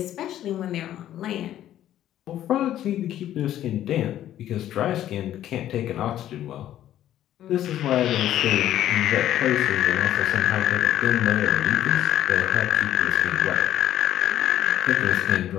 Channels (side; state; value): right; quieter; 12.1 dB